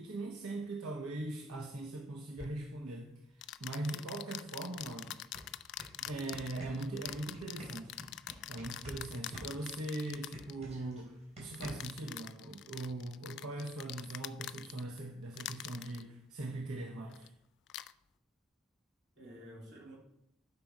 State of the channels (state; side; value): normal; both; correlation 0.63